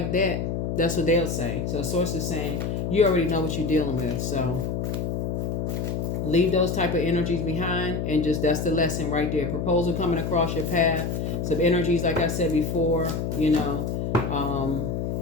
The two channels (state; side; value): noise; left; hum, 1 dB below the sound